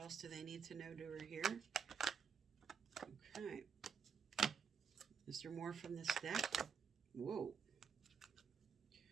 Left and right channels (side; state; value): left; quieter; 6.6 dB